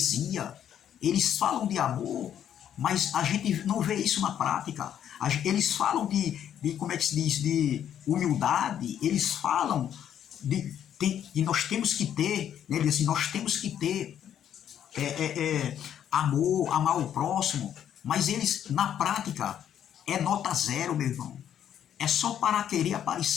Eles falam de amor, mas a gente não vê isso na prática. Eles falam de como é que se diz, de humildade, eles falam e nós temos que ter, né, assim, nós temos que ter amor, amar o próximo, mas eles, na prática, é nota zero, meu irmão. É só para querer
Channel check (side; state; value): right; quieter; 9.8 dB